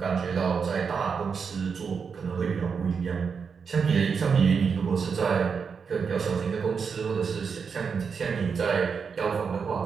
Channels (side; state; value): left; quieter; 5.9 dB